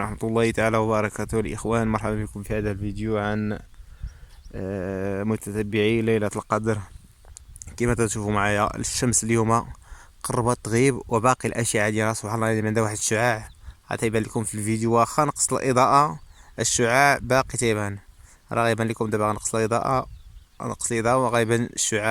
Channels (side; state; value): both; identical; correlation 1.00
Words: الله تعالى وبركاته الإخوان، مرحبا بكم في هذا الفيديو عن متتبعي ليلة القدر. كما تشوفوا معايا الشمس اليوم قربت تغيب وباقي الأشعة ديالها سبحان الله عندها واحد الشعاع غتيبان لكم في الفيديو. واخا نقص الإضاءة الشعاع باقي تيبان، راه غيبان لكم دابا. غنقص الإضاءة وغيبان